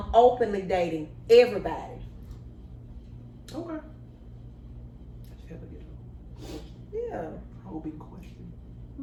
openly dating everybody. Okay. Yeah. Open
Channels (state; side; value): identical; both; correlation 1.00